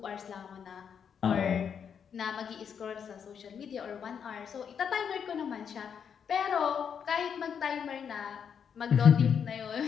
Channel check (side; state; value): right; quieter; 7.4 dB